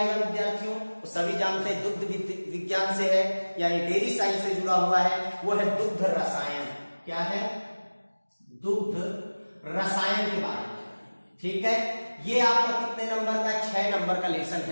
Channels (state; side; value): inverted; both; correlation -1.00